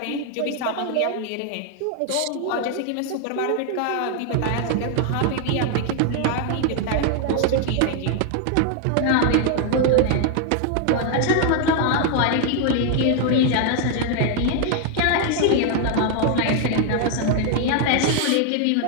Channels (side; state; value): both; different; correlation 0.00